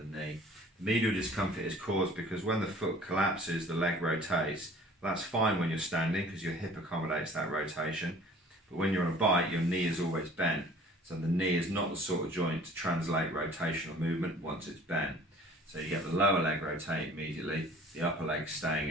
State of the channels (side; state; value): both; normal; correlation 0.49